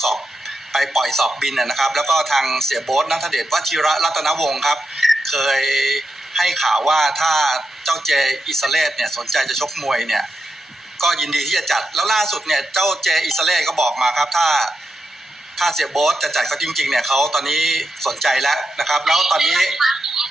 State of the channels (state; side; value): normal; both; correlation 0.86